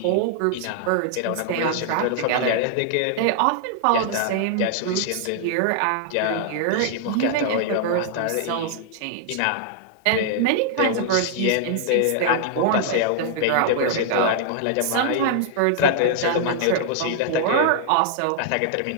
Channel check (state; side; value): different; both; correlation -0.01